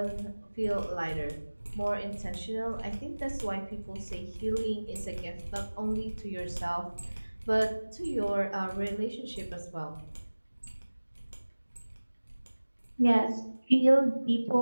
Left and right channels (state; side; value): inverted; both; correlation -1.00